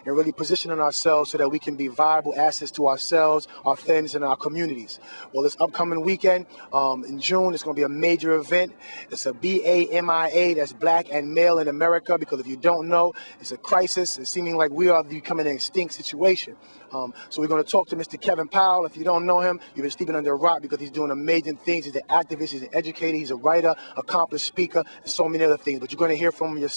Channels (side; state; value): both; inverted; correlation -1.00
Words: and really positioning ourselves so that we can be viable assets to ourselves, our friends, and our communities. Well, this upcoming weekend in June, it's going to be a major event. It's a BAMIA, that's Black and Male in America, because if you don't know, it's a crisis. It's seeming like we are becoming an extinct situation. So we're going to talk to Mr. Kevin Powell. If you don't know him, you've been sleeping under a rock, because he's doing amazing things. He's an activist, he's an educator, he's a writer, accomplished speaker, and so many other things. But you're going to hear from him